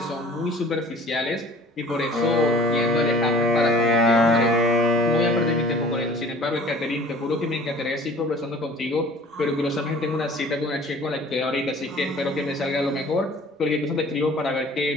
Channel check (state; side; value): normal; both; correlation 0.48